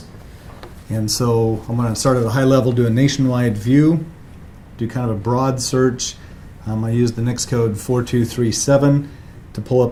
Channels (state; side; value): identical; both; correlation 1.00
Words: And so I'm going to start at a high level, do a nationwide view, do kind of a broad search. I use the NICS code 4237 to pull